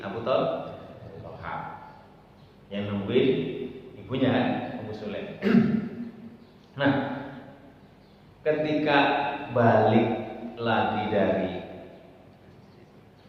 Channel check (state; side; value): identical; both; correlation 1.00